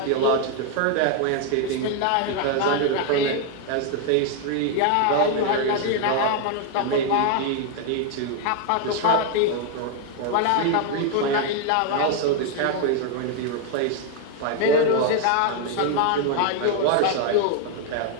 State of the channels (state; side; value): different; both; correlation 0.01